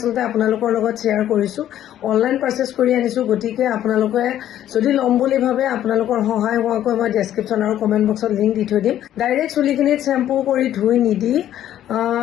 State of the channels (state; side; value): quieter; right; 11.7 dB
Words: আপোনালোকৰ লগত শ্বেয়াৰ কৰিছোঁ। অনলাইন পাৰ্চেছ কৰি আনিছোঁ, গতিকে আপোনালোকে যদি ল'ম বুলি ভাবে আপোনালোকৰ সহায় হোৱাকৈ মই ডেছক্ৰিপশ্যন আৰু কমেণ্ট বক্সত লিংক দি থৈ দিম। ডাইৰেক্ট চুলিখিনিত চেম্পু কৰি ধুই নিদি